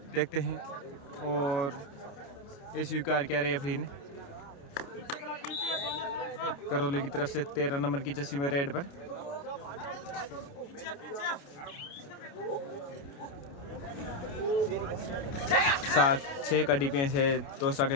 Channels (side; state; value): right; late; 29 ms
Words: देखते हैं, और ये स्वीकार किया रेफरी ने। करौली की तरफ से 13 नंबर की जर्सी में रेड पर 7-6 का डिफेंस है दौसा